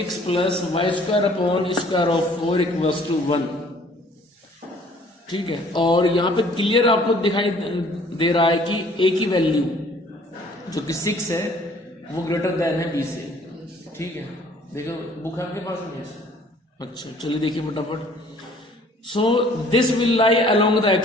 plus y² upon square of 4 equals to 1, ठीक है। और यहाँ पे क्लियर आपको दिखाई दे रहा है कि a की वैल्यू जो कि 6 है वो ग्रेटर देन है b से, ठीक है। देखो बुक आपके पास में है? अच्छा चलिए देखिए फटाफट। So this will lie along the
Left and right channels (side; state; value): both; normal; correlation 0.56